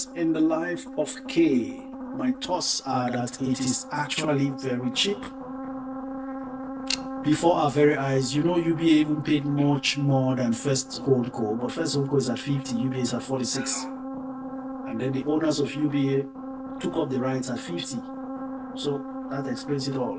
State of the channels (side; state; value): both; identical; correlation 1.00